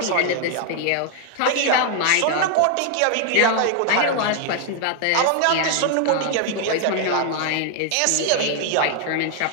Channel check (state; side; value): different; both; correlation 0.00